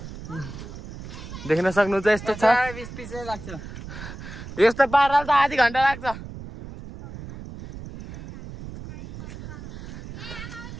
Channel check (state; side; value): noise; right; rumble, 12 dB below the sound